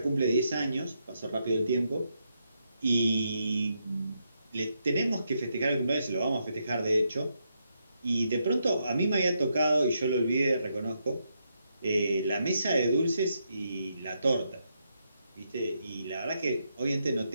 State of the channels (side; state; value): both; inverted; correlation -0.80